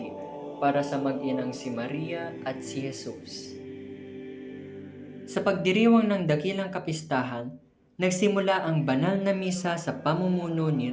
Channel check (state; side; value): identical; both; correlation 1.00